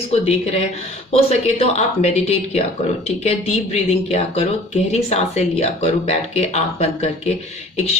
देख रहे हैं, हो सके तो आप मेडिटेट किया करो, ठीक है, डीप ब्रीदिंग किया करो, गहरी सांसें लिया करो, बैठ के आंख बंद करके एक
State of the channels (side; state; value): both; normal; correlation 0.49